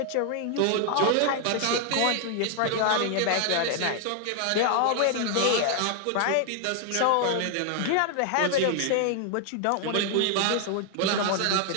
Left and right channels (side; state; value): both; different; correlation 0.00